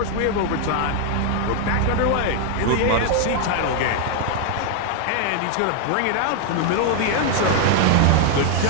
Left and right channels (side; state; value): both; different; correlation 0.00